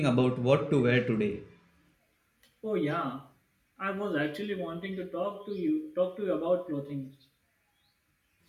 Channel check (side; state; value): both; identical; correlation 1.00